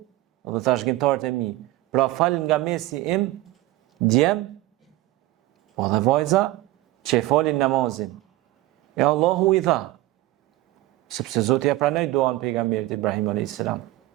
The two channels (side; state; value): left; quieter; 17.4 dB